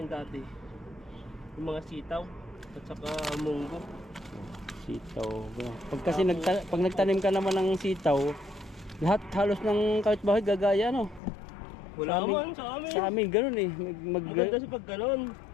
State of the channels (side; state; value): right; drops out; at 11.2 s